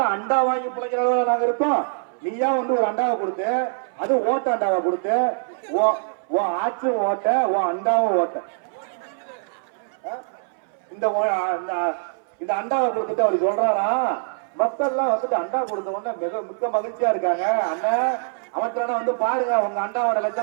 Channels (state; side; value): silent; left; 60 dB below the other